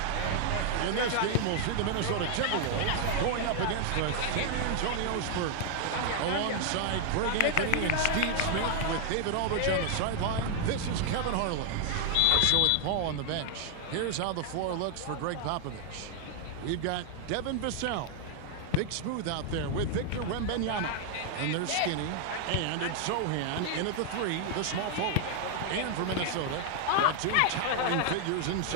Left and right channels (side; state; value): both; different; correlation 0.00